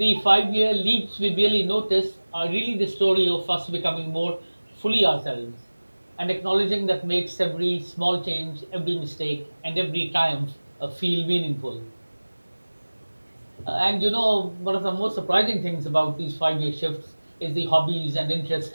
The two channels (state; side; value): inverted; both; correlation -1.00